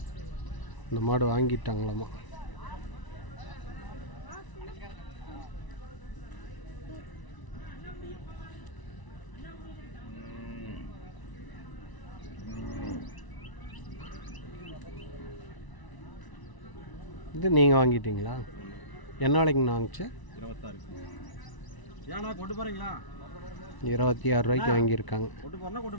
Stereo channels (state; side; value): late; right; 1.0 ms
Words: இந்த மாடு வாங்கிட்டாங்களாம்மா. இது நீங்கள் வாங்கிட்டீங்களா? என்ன விலைக்குண்ணா வாங்கிச்சு? 26. ஏன்னா கொண்டு போகிறீங்களா? 26 ரூபாய்க்கு வாங்கியிருக்காங்க. கொண்டு போகிறனா